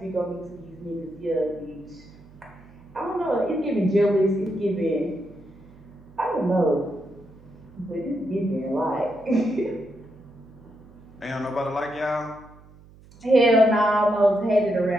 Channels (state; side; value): noise; right; hum, 23 dB below the sound